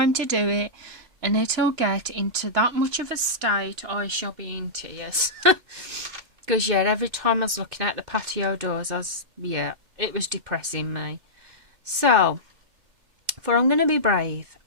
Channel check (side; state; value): left; late; 2.6 ms